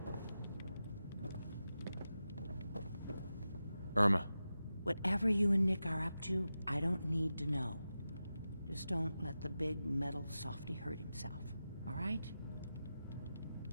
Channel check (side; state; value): both; inverted; correlation -0.92